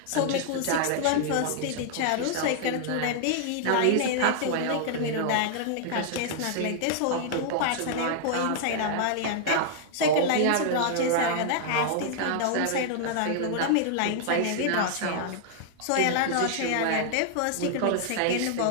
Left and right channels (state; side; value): different; both; correlation -0.01